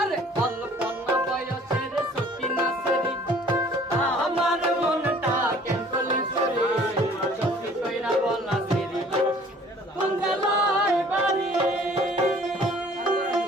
অল্প না বয়সের সকিনা সেরি আমার মনটা কেন করলি চুরি সত্যি কইরা বল না সেরি কোন জেলায় বাড়ি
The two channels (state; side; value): normal; both; correlation 0.53